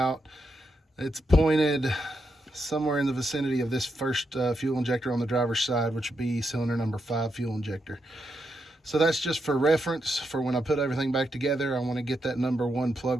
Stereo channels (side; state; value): both; normal; correlation 0.83